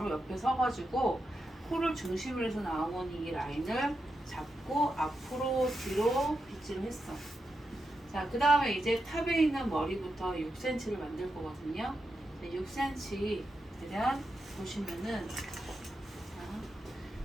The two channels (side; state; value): both; normal; correlation 0.87